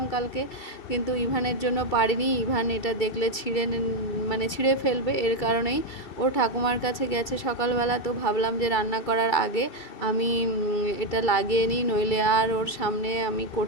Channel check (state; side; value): late; right; 2.3 ms